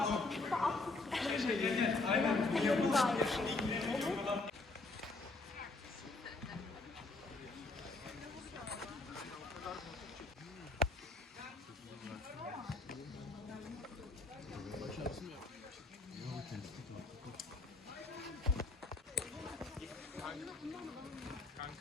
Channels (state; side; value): quieter; right; 3.4 dB